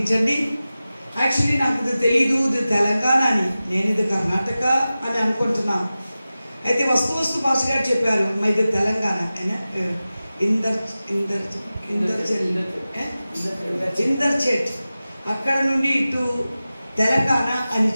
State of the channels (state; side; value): inverted; both; correlation -0.95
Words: యాక్చువల్లీ నాకు ఇది తెలియదు, ఇది తెలంగాణ అని, నేను ఇది కర్ణాటక అని అనుకుంటున్నాను. అయితే వస్తు భాష గారు చెప్పారు మా ఇది తెలంగాణ ఇందర్చేట్ అక్కడ నుండి ఇటు తెలంగాణ అని